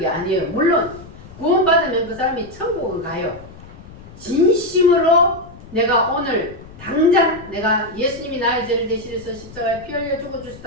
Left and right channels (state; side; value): noise; left; rumble, 18 dB below the sound